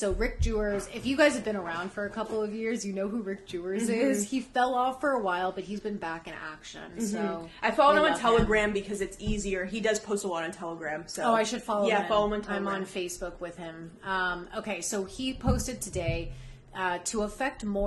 Rick Jewers, if you guys have been around for a couple of years, you know who Rick Jewers is. He fell off for a while, but he's been back in action. So I followed him on Telegram because it's easier. He does post a lot on Telegram. So I should follow him. Yeah, follow him on Telegram. I'm on Facebook with him. Okay, so he posted today, to affect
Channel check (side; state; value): both; identical; correlation 1.00